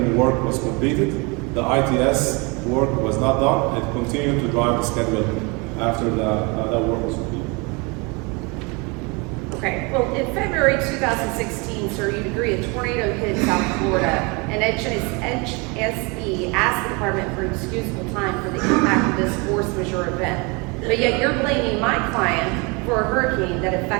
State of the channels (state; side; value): quieter; left; 29.1 dB